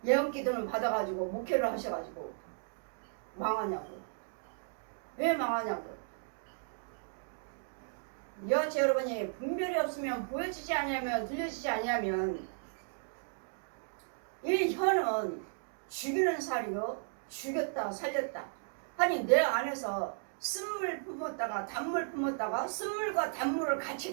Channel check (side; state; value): left; silent; digital silence